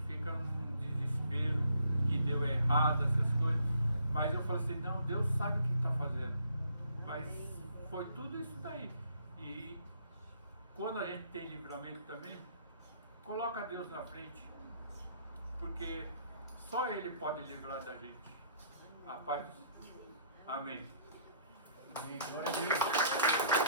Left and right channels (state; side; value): inverted; both; correlation -0.65